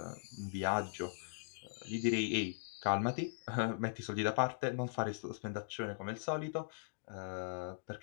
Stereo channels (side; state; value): right; silent; digital silence